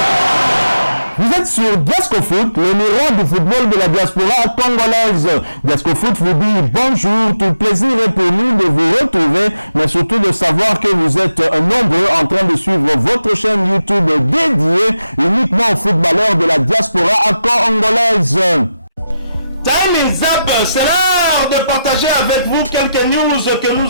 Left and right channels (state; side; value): inverted; both; correlation -0.88